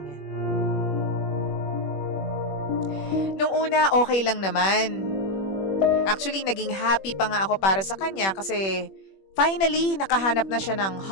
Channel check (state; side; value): late; right; 21 ms